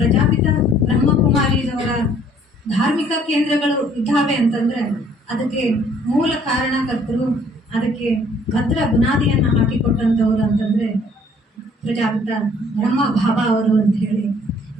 ಬ್ರಹ್ಮಕುಮಾರಿಯವರ ಧಾರ್ಮಿಕ ಕೇಂದ್ರಗಳು ಇದ್ದಾವೆ ಅಂತಂದರೆ ಅದಕ್ಕೆ ಮೂಲ ಕಾರಣಕರ್ತರು, ಅದಕ್ಕೆ ಭದ್ರ ಬುನಾದಿಯನ್ನು ಹಾಕಿಕೊಟ್ಟಂಥವ್ರು ಅಂತಂದರೆ ಪ್ರಜಾಪಿತ ಬ್ರಹ್ಮ ಭಾವ ಅವರು ಅಂತ ಹೇಳಿ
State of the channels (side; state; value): both; normal; correlation 0.59